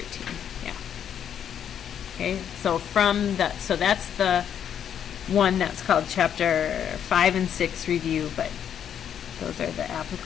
Yeah. Okay, so from the, so that's the one that's called Chapter 5 and 6 review, but those are the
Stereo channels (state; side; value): quieter; right; 9.0 dB